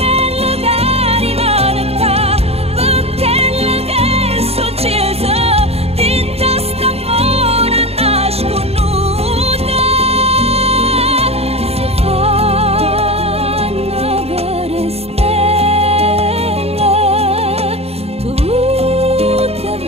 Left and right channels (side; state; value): left; late; 0.29 ms